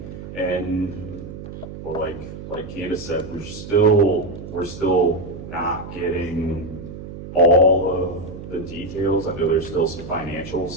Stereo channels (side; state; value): right; noise; hum, 11 dB below the sound